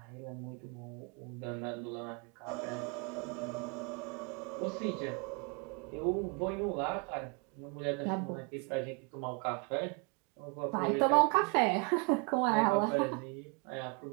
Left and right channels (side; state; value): left; quieter; 32.7 dB